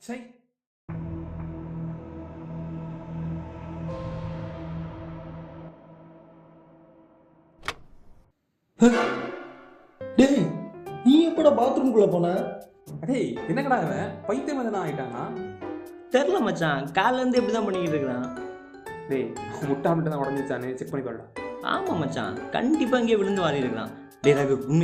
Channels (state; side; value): identical; both; correlation 1.00